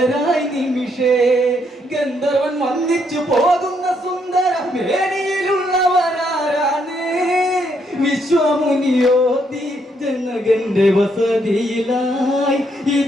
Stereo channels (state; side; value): normal; both; correlation 0.74